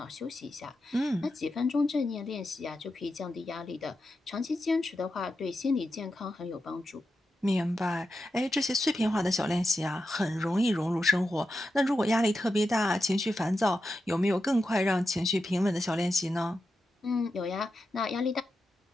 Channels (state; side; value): normal; both; correlation 0.89